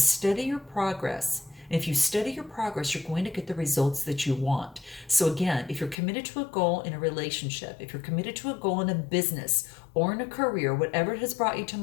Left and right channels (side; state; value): right; drops out; at 6.0 s